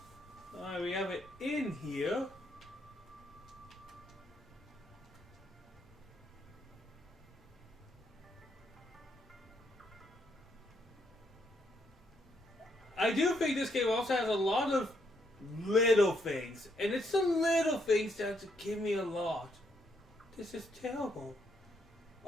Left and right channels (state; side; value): normal; both; correlation 0.75